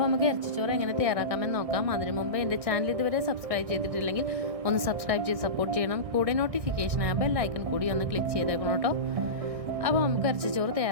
നമുക്ക് ഇറച്ചിച്ചോറ് എങ്ങനെ തയ്യാറാക്കാമെന്ന് നോക്കാം. അതിനു മുമ്പ് എൻ്റെ ചാനൽ ഇതുവരെ സബ്സ്ക്രൈബ് ചെയ്തിട്ടില്ലെങ്കിൽ ഒന്ന് സബ്സ്ക്രൈബ് ചെയ്ത് സപ്പോർട്ട് ചെയ്യണം. കൂടെ നോട്ടിഫിക്കേഷൻ ആ ബെൽ ഐക്കൺ കൂടി ഒന്ന് ക്ലിക്ക് ചെയ്തേക്കണം കേട്ടോ. അപ്പോൾ നമുക്ക് ഇറച്ചിച്ചോറ്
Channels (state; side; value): late; left; 1.6 ms